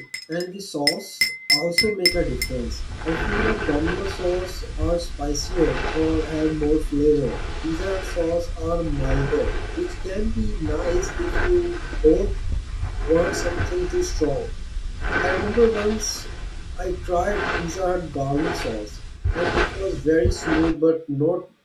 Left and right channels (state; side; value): identical; both; correlation 1.00